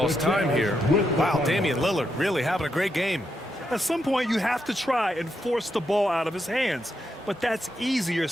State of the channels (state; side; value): normal; both; correlation 0.82